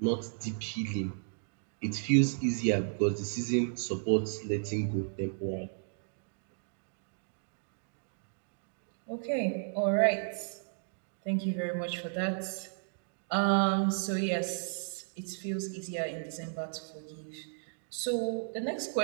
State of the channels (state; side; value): silent; left; digital silence